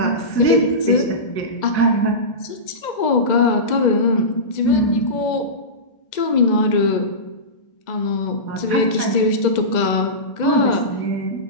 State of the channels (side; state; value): right; late; 2.0 ms